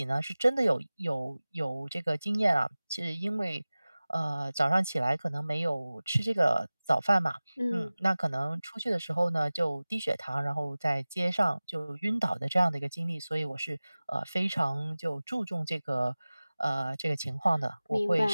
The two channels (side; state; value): both; inverted; correlation -0.98